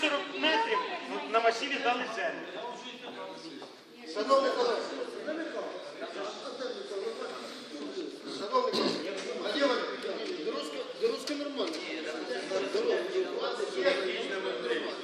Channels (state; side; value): identical; both; correlation 1.00